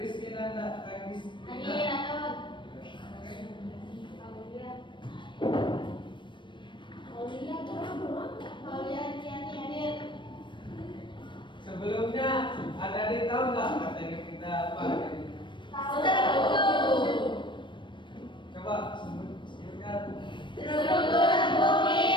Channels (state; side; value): late; right; 0.23 ms